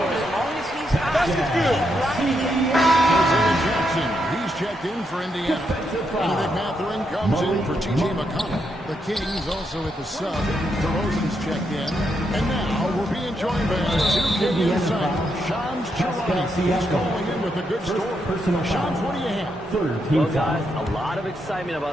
as long as he's hot, keep grinding it. Isaiah Jackson, he's checked in for Indiana. Benedict Mathurin comes in for T.J. McConnell. The Kings also at the sub. DeRozan's checked in. And now we're being joined by our 2K insider, Shams Charania. He's calling in with a good story. Shams, what do you have? Well, guys, a lot of excitement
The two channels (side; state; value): both; normal; correlation 0.80